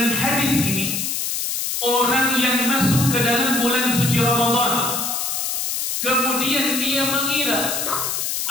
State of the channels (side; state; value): left; noise; hiss, 1 dB below the sound